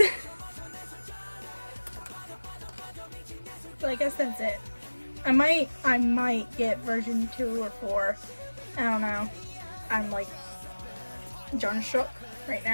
So I guess that's it. I might get version 2 or 4. I don't know. I'm like John shook right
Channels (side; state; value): both; inverted; correlation -1.00